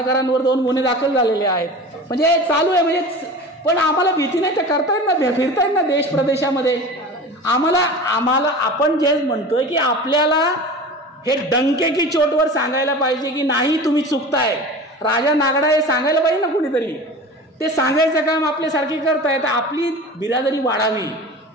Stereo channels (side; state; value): both; normal; correlation 0.35